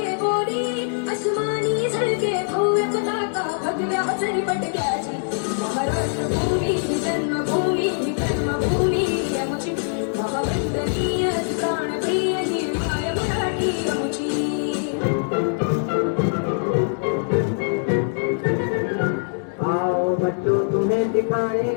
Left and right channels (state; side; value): silent; right; digital silence